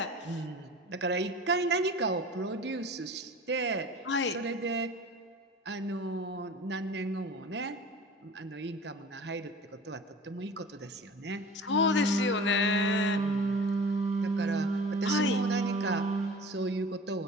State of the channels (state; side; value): normal; both; correlation 0.40